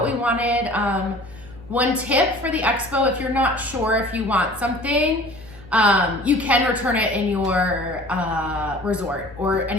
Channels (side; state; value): right; noise; hum, 21 dB below the sound